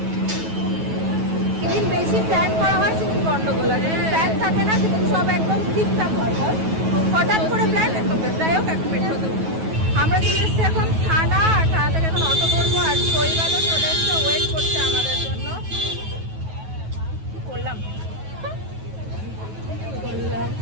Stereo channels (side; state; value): left; late; 9.3 ms